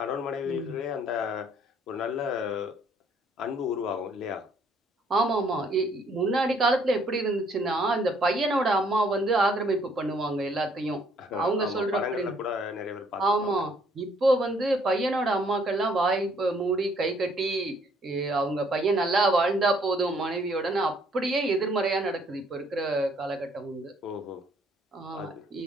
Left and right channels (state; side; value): normal; both; correlation 0.64